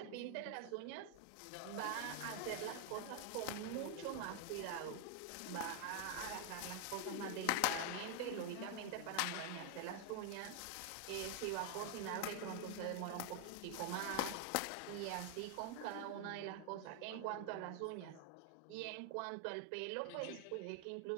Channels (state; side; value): different; both; correlation 0.00